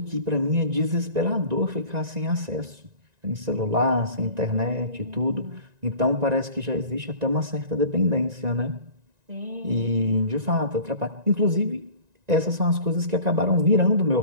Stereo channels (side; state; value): left; late; 1.9 ms